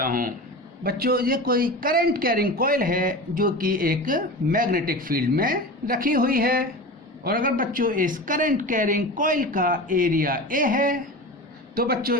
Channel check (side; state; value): both; normal; correlation 0.30